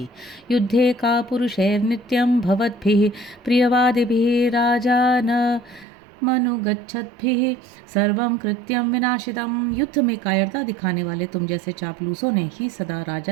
युद्धे का पुरुषैर नित्यं भवद्भिः प्रियवादिभिः राजा न मनुगच्छद्भिः सर्वं कृत्यं विनाशितम्। युद्ध में कायरता दिखाने वाले तुम जैसे चापलूसों ने ही सदा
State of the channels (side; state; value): left; drops out; at 5.9 s